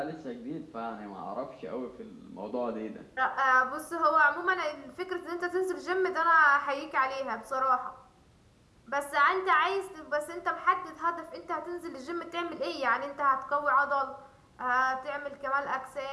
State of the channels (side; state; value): both; identical; correlation 1.00